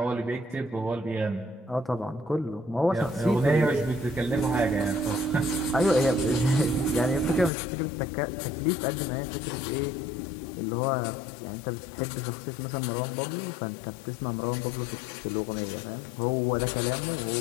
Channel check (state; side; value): drops out; right; at 7.5 s